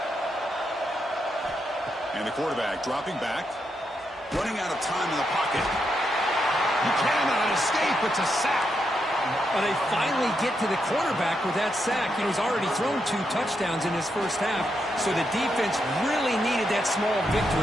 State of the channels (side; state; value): both; normal; correlation 0.82